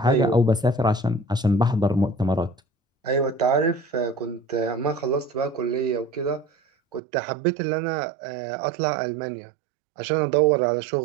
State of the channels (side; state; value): left; drops out; at 7.0 s